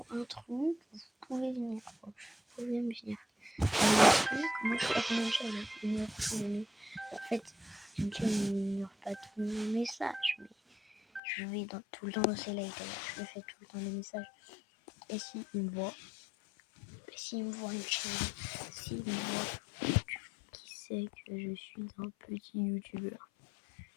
un truc, vous pouvez venir. Quoi. Vous pouvez me venir. Moi je crois que mon chat en fait, mon chat n'ignore pas tous mes messages, mais je vais tout le temps dans ses likes, je lui fais tout le temps des messages. Et s'il me voit, une chaîne, s'il me voit, qui sait que je suis un petit youtubeur.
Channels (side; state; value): right; drops out; at 11.2 s